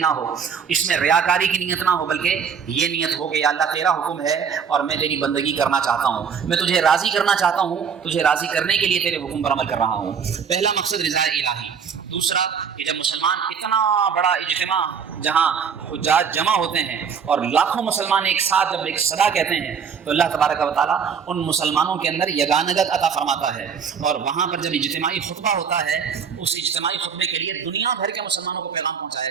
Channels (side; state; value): left; quieter; 6.7 dB